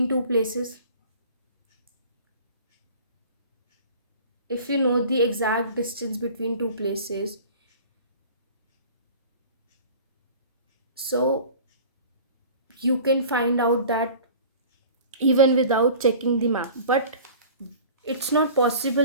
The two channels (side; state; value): both; inverted; correlation -0.42